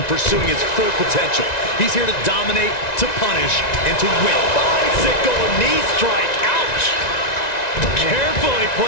pursuing his full potential. He's here to dominate, to punish, and to win. Bicycle knee strike. Ouch! Carefully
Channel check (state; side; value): late; right; 1.9 ms